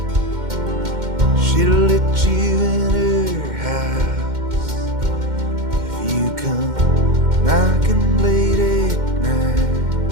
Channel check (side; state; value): left; late; 2.1 ms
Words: She'll let you in her house if you come knocking late at night.